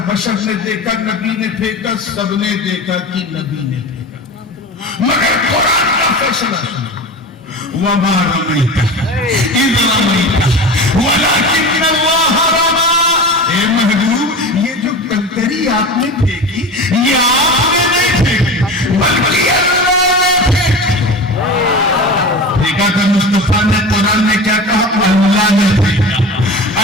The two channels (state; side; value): normal; both; correlation 0.31